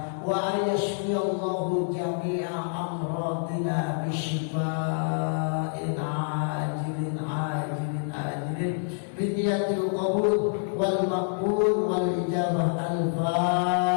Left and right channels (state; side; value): silent; right; 60 dB below the other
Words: wa ayashfiyallahu jami'a amradina bisyifa'in ajilin biniyatil qabul wal maqbul wal ijabah